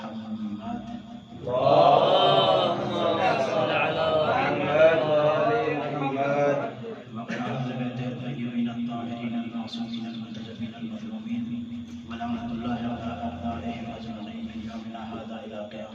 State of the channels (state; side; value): identical; both; correlation 1.00